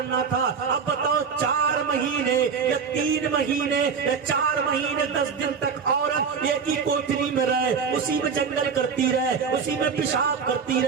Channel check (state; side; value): quieter; left; 6.1 dB